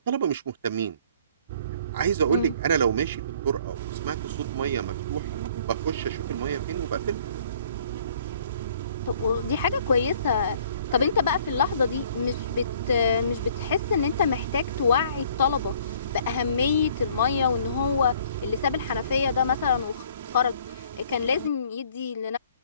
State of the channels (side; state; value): both; inverted; correlation -0.58